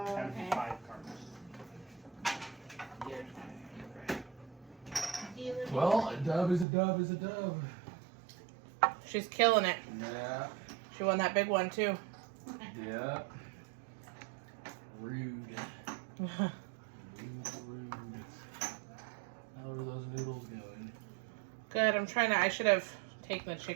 okay. 5 cards. Well, a dub is a dub is a dub. She's killing it. Yeah. She won that big one too. Yeah. Rude. Rude. How are those noodles going? Good. I should have taken the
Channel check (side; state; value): left; drops out; at 6.7 s